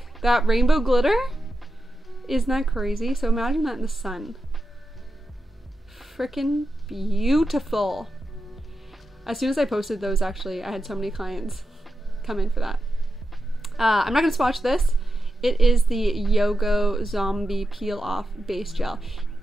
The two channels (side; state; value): both; normal; correlation 0.89